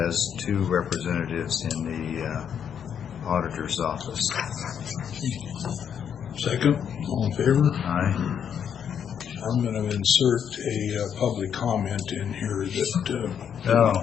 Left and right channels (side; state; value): right; quieter; 8.2 dB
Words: 2 representatives in the auditor's office. Second, all in favor? Aye. I'm going to insert a public comment in here that didn't